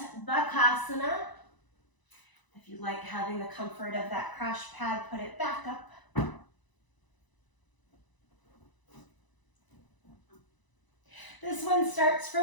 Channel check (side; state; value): right; late; 1.0 ms